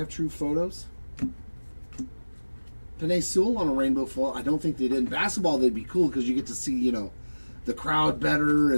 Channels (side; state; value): both; inverted; correlation -1.00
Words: True Photos? Panay Sewell on a rainbow foil. I don't think they did. In basketball, they'd be cool because you get to see, you know, the crowd better